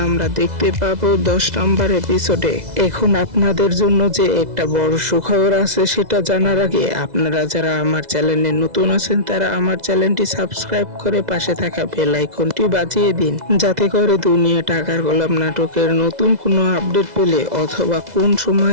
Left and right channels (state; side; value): late; left; 2.0 ms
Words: আমরা দেখতে পাবো 10 নম্বর এপিসোডে। এখন আপনাদের জন্য যে একটা বড় সুখবর আছে সেটা জানার আগে আপনারা যারা আমার চ্যানেলে নতুন আছেন তারা আমার চ্যানেলটি সাবস্ক্রাইব করে পাশে থাকা বেল আইকনটি বাজিয়ে দিন, যাতে করে দুনিয়া টাকার গোলাম নাটকের নতুন কোনো আপডেট পেলে অথবা কোন